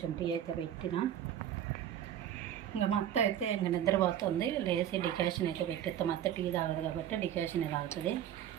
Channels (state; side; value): quieter; left; 10.5 dB